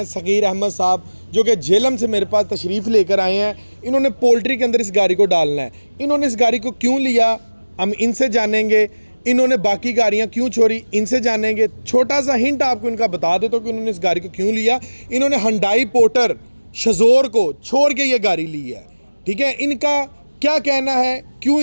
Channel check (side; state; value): both; inverted; correlation -1.00